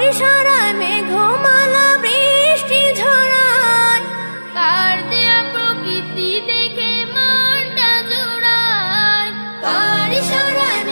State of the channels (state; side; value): inverted; both; correlation -1.00